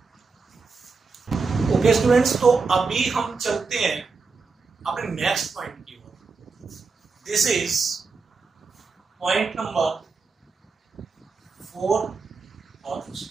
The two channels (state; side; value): quieter; left; 4.6 dB